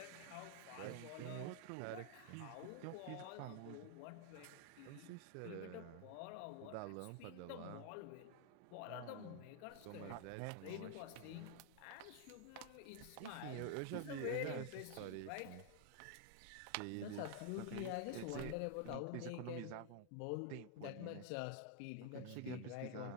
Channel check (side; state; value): both; different; correlation 0.00